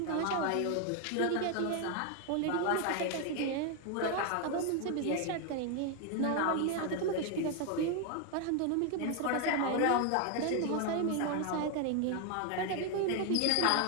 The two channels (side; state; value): both; different; correlation 0.01